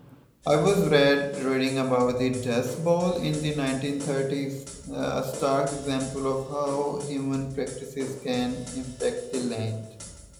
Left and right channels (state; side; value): identical; both; correlation 1.00